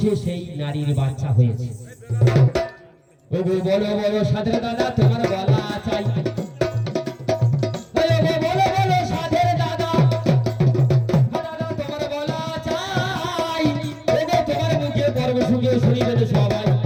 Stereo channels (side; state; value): both; identical; correlation 1.00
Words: সেই নারীর বাচ্চা হয়েছে? ওগো বলো বলো সাধের দাদা, তোমার বলা চাই। বলো বলো সাধের দাদা, দাদা তোমার বলা চাই। ওগো তোমার মুখে পর্ব শুনে শুনিবে তো সবাই।